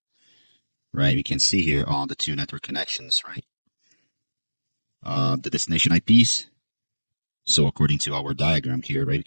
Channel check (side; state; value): both; inverted; correlation -1.00